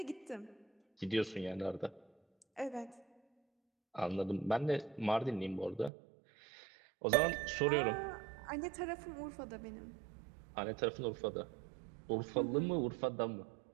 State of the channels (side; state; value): left; drops out; at 5.9 s